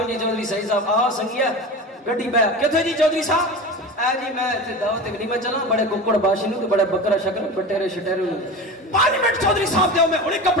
جی چودھری سعید صاحب آ سنگیا گڈی بہ کتھے جی چودھری صاحب؟ اے جی میں تے دعوت ولیمہ چلا، بڑے ککڑ باشی نو تے بڑے بکرا شکر بٹیرے شٹیرے نو 5 منٹ چودھری صاحب دیو میں ہنے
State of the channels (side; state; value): both; normal; correlation 0.29